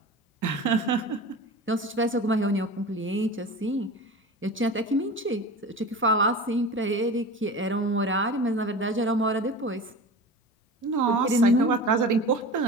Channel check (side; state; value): both; normal; correlation 0.33